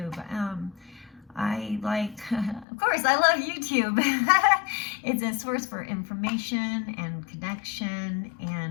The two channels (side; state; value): right; drops out; at 2.7 s